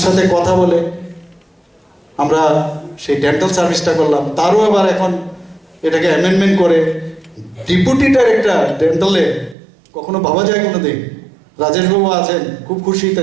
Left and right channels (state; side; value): drops out; left; at 9.6 s